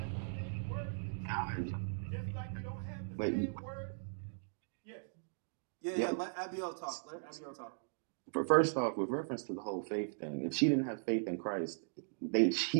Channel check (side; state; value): left; silent; digital silence